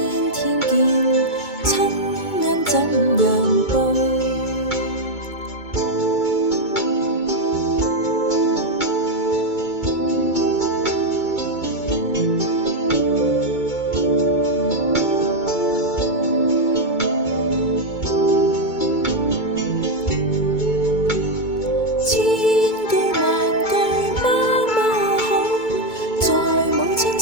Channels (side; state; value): right; late; 2.2 ms